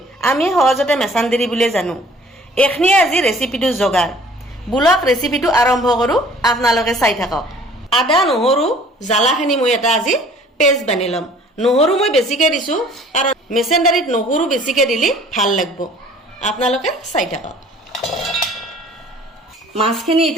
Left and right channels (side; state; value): both; normal; correlation 0.52